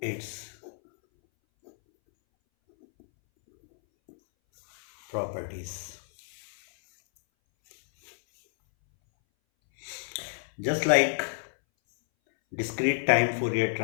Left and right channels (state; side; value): silent; right; 58 dB below the other